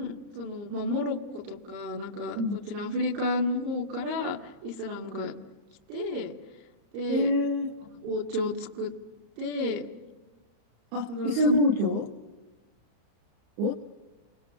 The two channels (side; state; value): left; late; 34 ms